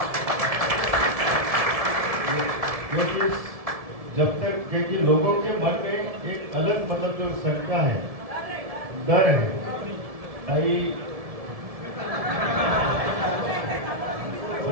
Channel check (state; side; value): late; left; 1.7 ms